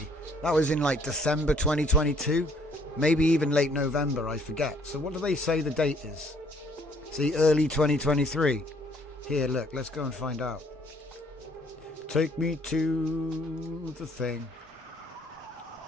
That was in December 2022, maybe even late November. I forget. So what do they say the date is? See, early 2023. Here, look. Let's go and find out. Take me to the thing.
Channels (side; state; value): both; normal; correlation 0.62